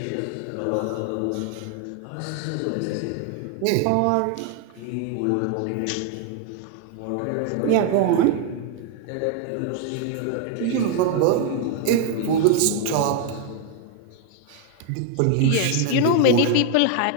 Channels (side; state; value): both; different; correlation 0.01